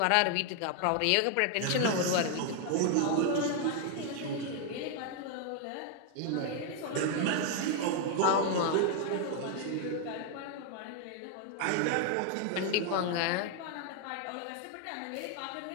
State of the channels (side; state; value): both; different; correlation 0.00